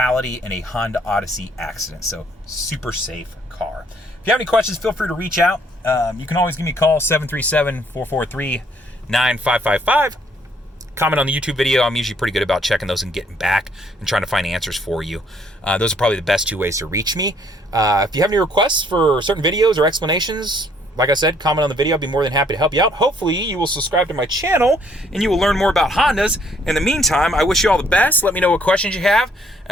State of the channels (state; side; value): normal; both; correlation 0.65